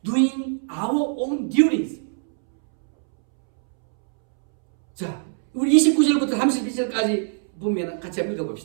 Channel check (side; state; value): left; silent; 64 dB below the other